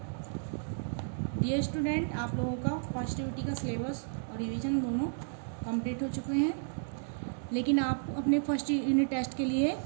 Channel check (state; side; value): silent; left; digital silence